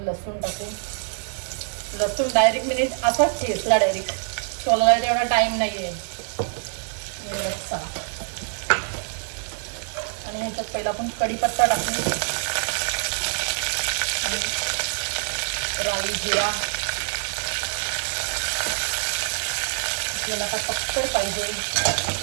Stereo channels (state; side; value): silent; left; 62 dB below the other